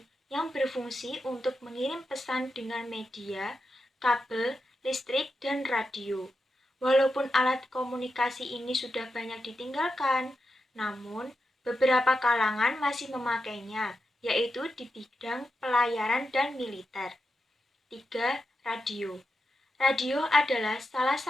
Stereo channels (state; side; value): normal; both; correlation 0.88